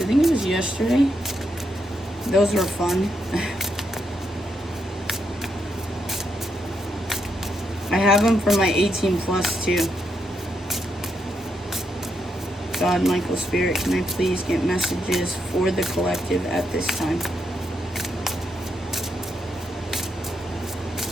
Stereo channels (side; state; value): both; normal; correlation 0.80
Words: think it was yesterday. Those were fun. I have them for my 18 plus too. God, Michael, Spirit, can I please get messages for the collective at this time?